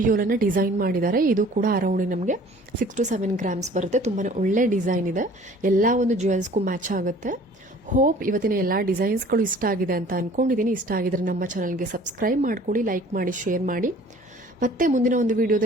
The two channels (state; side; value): normal; both; correlation 0.50